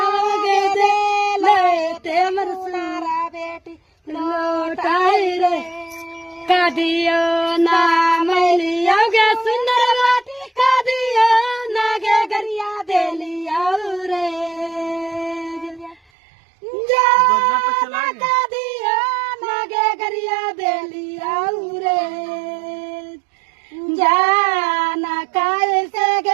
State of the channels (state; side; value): drops out; left; at 16.0 s